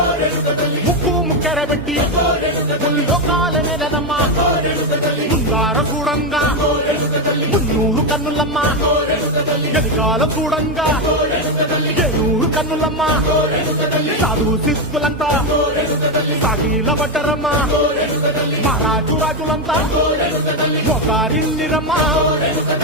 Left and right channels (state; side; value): normal; both; correlation 0.08